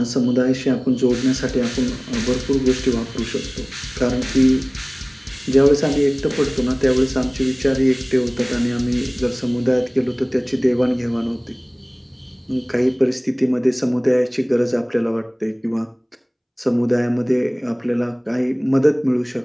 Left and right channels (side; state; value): both; identical; correlation 1.00